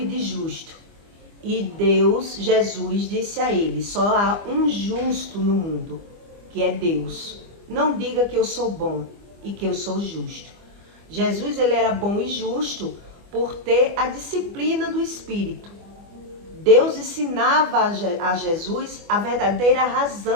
de justo. E Jesus disse a ele: só há um justo no mundo, que é Deus. Não diga que eu sou bom e que eu sou justo. Jesus, ele era bom e justo por ter a disciplina do Espírito. Deus ensinava a Jesus a verdadeira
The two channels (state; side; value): late; left; 25 ms